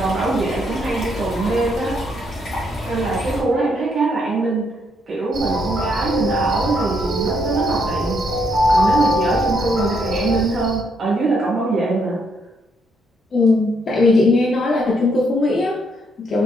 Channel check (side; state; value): both; normal; correlation 0.73